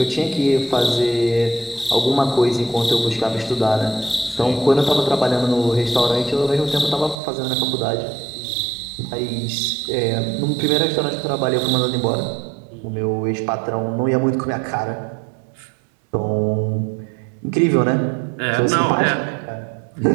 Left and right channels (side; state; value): left; drops out; at 7.2 s